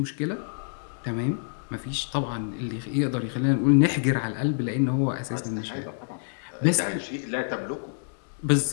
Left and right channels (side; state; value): right; silent; digital silence